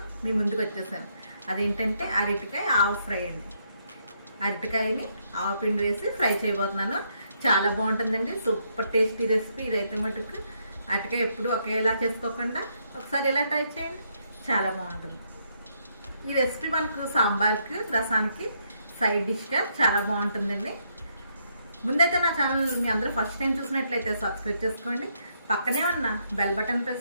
మీ ముందుకు వచ్చేసాను. అదేంటంటే అరటికాయ ఆవు ఫ్రై అండి. అరటికాయని ఆవు పిండి వేసి ఫ్రై చేయబోతున్నాను. చాలా బాగుంటుందండి, సూపర్ టేస్టీ రెసిపీ ఇదైతే. మటుకు అరటికాయ ఎప్పుడు ఒకేలా చేసుకోకుండా ఒకసారి ఇలా ట్రై చేయండి, చాలా బాగుంటుంది. ఈ రెసిపీ మనకు సాంబార్కి, రసానికి సైడ్ డిష్గా చాలా బాగుంటుందండి. ముందైతే నా ఛానల్ మీ అందరూ ఫస్ట్ టైం చూసినట్లయితే సబ్స్క్రైబ్ చేసుకోండి. పక్కనే ఉన్న బెల్ బటన్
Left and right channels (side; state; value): both; inverted; correlation -0.75